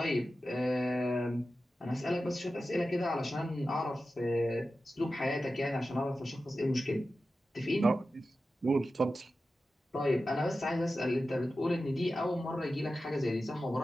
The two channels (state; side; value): normal; both; correlation 0.93